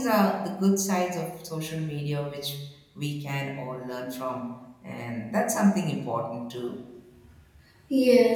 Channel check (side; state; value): both; identical; correlation 1.00